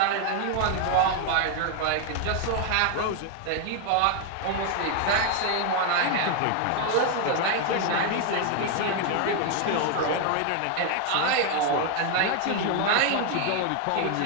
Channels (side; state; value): both; different; correlation 0.01